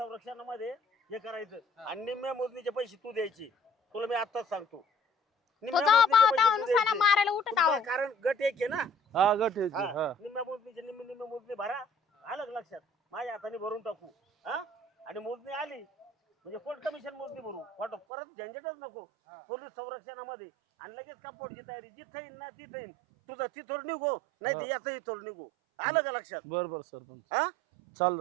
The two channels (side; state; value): left; drops out; at 18.0 s